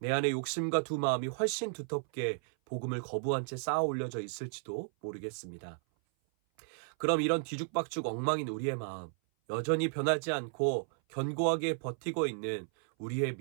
안에 욕심과 두 마음이 훨씬 두텁게 복음을 거부한 채 쌓아 올려져 있을지도 모르겠습니다. 그럼 이런 뒤죽박죽 엉망인 우리의 마음, 여전히 변하지 않고 견고하게 버티고 있는 우리의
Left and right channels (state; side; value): silent; left; 55 dB below the other